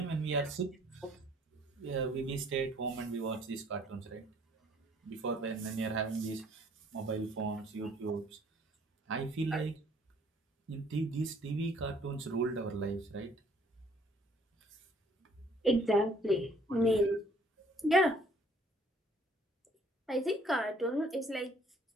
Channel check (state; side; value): normal; both; correlation 0.59